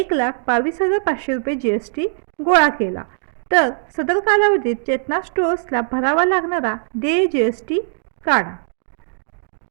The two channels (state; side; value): silent; left; digital silence